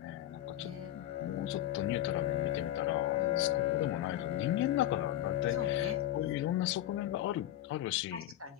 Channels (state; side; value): quieter; right; 12.9 dB